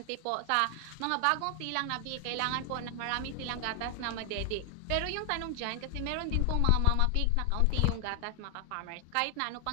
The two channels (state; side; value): different; both; correlation 0.00